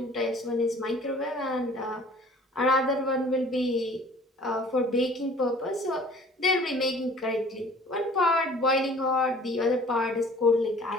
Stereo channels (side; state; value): both; normal; correlation 0.50